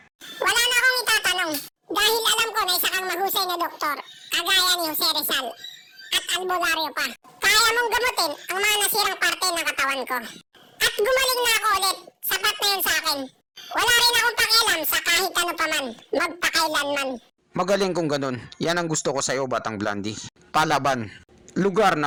Wala na akong itatanong. Dahil alam ko na isa kang mahusay na doktor. Kagaya ni Jose Rizal. At albularyo pa. Kaya mong gamutin ang mga nasirang parte ng katawan ko. At gumaling na ako ulit. Sapat na yun sa akin. Wala rin akong pakialam sa kahit ano pa man. Magpakailanman. Magaling kung ganun. Yan ang gusto ko sa'yo, Batang Blandy. Palaban. Lugar na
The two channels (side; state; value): both; identical; correlation 1.00